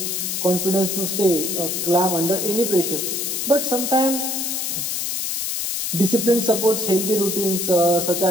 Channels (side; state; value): left; noise; hiss, 2 dB below the sound